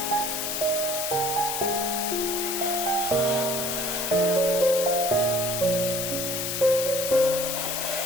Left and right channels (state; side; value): noise; left; hiss, 2 dB below the sound